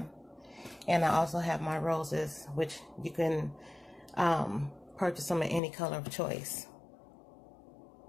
And I also have my roses, which you can purchase them in any color of choice.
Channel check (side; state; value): right; drops out; at 5.6 s